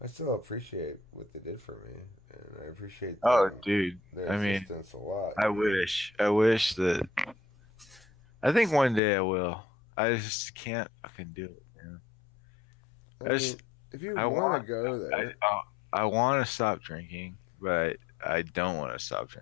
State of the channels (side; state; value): right; drops out; at 9.0 s